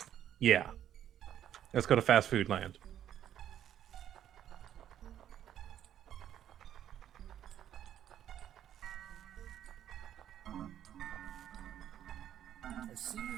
Yeah. Let's go to fast food land. I see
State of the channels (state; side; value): quieter; left; 10.6 dB